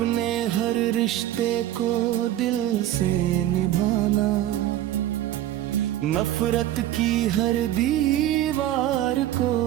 हर रिश्ते को दिल से निभाना, नफरत की हर दीवार को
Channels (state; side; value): quieter; left; 13.1 dB